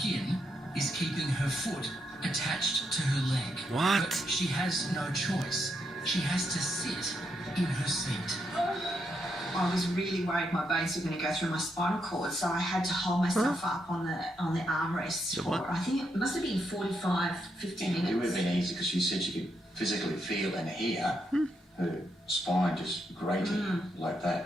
is keeping her foot attached to her leg. What? But she has no choice. she has to sit in her seat. I was really worried my bones were going to go through my spinal cord, so I had to hold myself up on the armrest for, I think it must have been 45, 50 minutes. It would have been easy because she said she could physically feel and hear her spine just grating like that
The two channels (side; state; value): both; normal; correlation 0.80